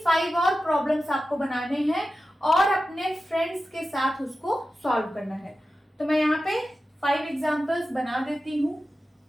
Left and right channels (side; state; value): both; normal; correlation 0.93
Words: 5 और प्रॉब्लम्स आपको बनाने हैं और अपने फ्रेंड्स के साथ उसको सॉल्व करना है। तो मैं यहाँ पे 5 एग्जाम्पल्स बना देती हूँ।